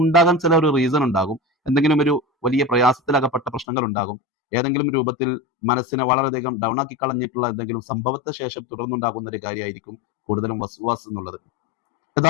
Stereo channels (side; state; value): right; drops out; at 3.7 s